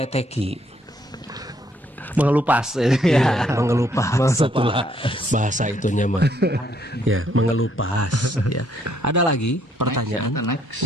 Mengelupas Ya, mengelupas. Itulah bahasa itunya mah. Ya, mengelupas ya. Ada lagi pertanyaan? Next.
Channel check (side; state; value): both; normal; correlation 0.69